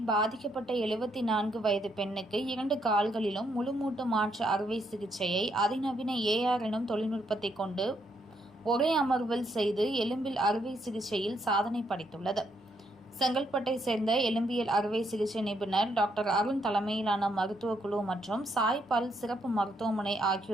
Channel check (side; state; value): both; normal; correlation 0.75